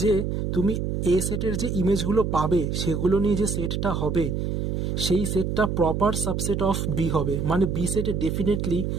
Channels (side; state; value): right; noise; hum, 1 dB below the sound